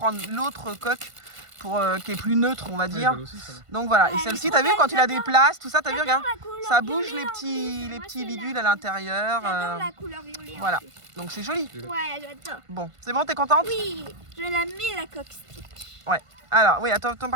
l'autre coque pour, qui est plus neutre, on va Ouais, dire. belle aussi, ça va. Donc voilà. Et elle celle-ci, est t'as trop vu quand belle, il a des places, tout ça, t'as vu, regarde. La couleur Ça bouge violet les en petits, plus. les Moi, petits c'est bidules la- à l'intérieur. J'adore la couleur violet. en voilà. plus. Donc c'est joli. Ouais, j'adore. Bon, c'est bon, t'es contente? Oui, je la mets la coque Stitch. Ouais. Alors, oui, attends,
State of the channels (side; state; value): left; late; 1.5 ms